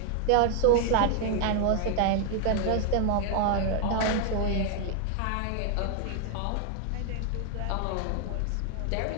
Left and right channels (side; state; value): both; different; correlation 0.00